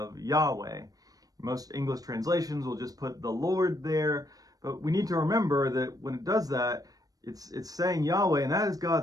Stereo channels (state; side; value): late; left; 0.18 ms